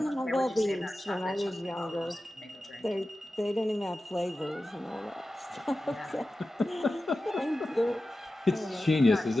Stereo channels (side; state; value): both; normal; correlation 0.94